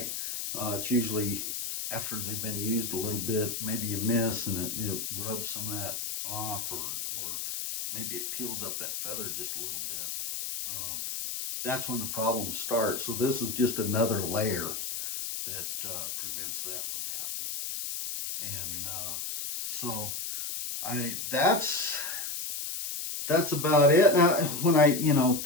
It's usually after they've been used a little bit, maybe you miss and it rubs some of that off, or maybe it peels up that feather just a little bit. That's when the problems start. So this is just another layer that prevents that from happening. And so that's about it. Now, when I, you know,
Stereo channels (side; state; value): left; noise; hiss, 4 dB below the sound